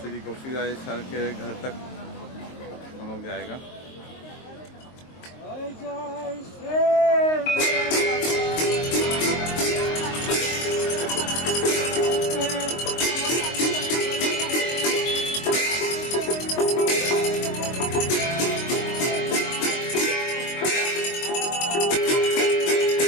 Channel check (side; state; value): right; late; 23 ms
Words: श्री गोपी राय सर के घर तक हम लोग जाएगा।